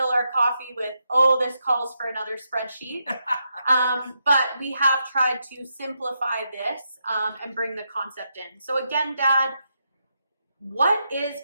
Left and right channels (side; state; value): both; inverted; correlation -0.84